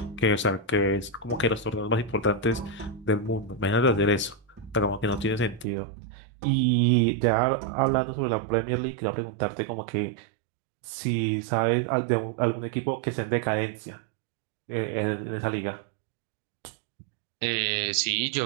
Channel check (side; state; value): left; drops out; at 5.7 s